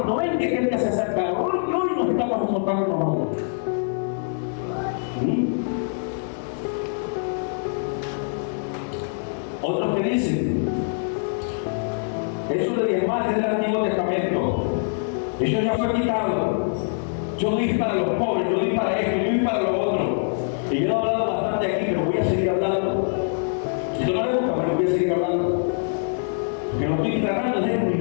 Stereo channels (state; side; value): silent; right; 63 dB below the other